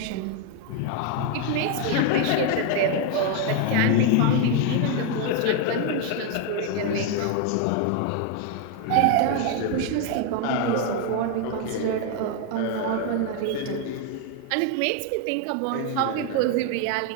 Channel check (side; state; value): both; different; correlation 0.01